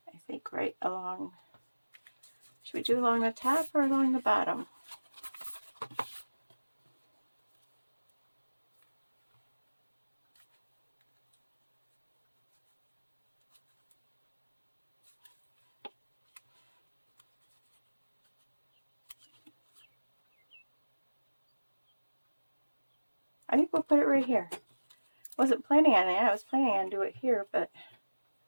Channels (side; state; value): both; inverted; correlation -1.00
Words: I think, right along. Should we do along the top or along the bottom? I think we'll put it right here. Wasn't planning on it. I was planning on doing it here, but